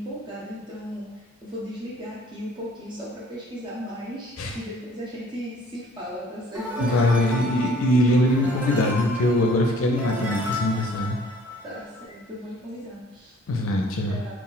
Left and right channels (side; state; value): both; normal; correlation 0.56